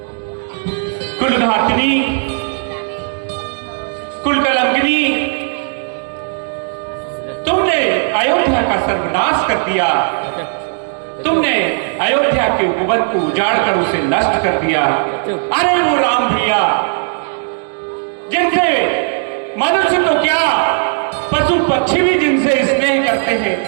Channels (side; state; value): left; silent; 58 dB below the other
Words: कुलघातिनी, कुल कलंकिनी, तुमने अयोध्या का सर्वनाश कर दिया। तुमने अयोध्या के उपवन को उजाड़ कर उसे नष्ट कर दिया। अरे वो राम भैया, जिनसे मनुष्य तो क्या पशु पक्षी भी जिनसे स्नेह करते हैं,